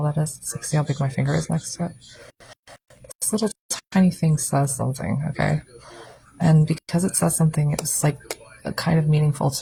that is? It's like, see how big my finger is next to it? This little tiny thing says something, okay? And because it says something, it was like kind of meaningful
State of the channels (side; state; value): both; identical; correlation 1.00